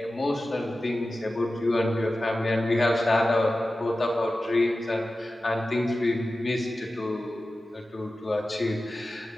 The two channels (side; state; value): both; normal; correlation 0.94